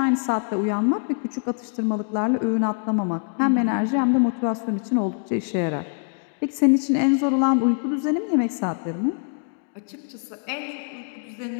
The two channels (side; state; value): right; silent; 57 dB below the other